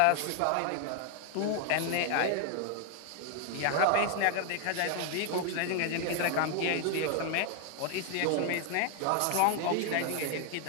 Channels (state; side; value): different; both; correlation 0.00